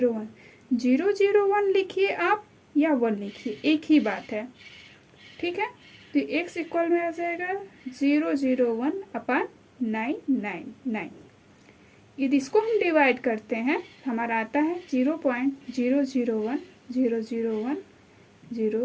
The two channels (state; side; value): identical; both; correlation 1.00